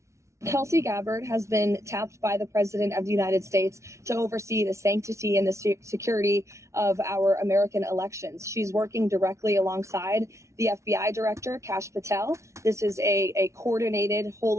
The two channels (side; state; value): left; late; 0.14 ms